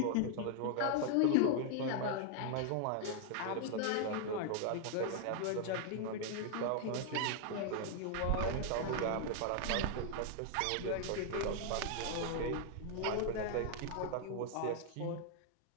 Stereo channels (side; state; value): both; different; correlation 0.00